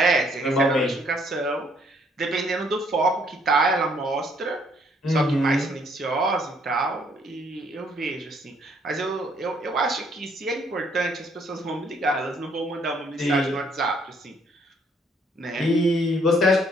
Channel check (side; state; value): both; normal; correlation 0.66